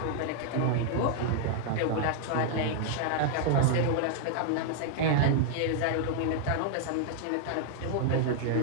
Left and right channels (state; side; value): different; both; correlation -0.01